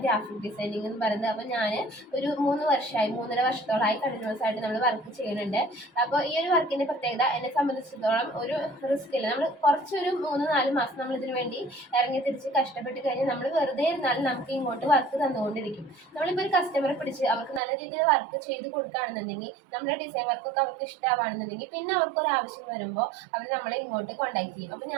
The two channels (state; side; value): drops out; left; at 17.6 s